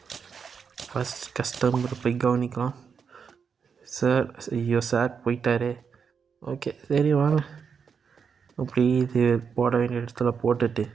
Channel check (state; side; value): quieter; left; 6.3 dB